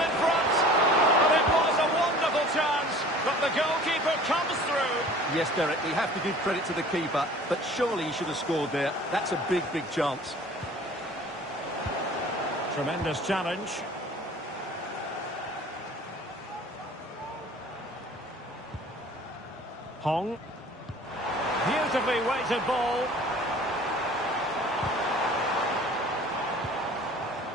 Yes, Derek, we have to give credit to the keeper, but surely he should have scored there. That's a big, big chance. Tremendous challenge. Hong. Beautifully weighted ball.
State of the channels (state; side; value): normal; both; correlation 0.47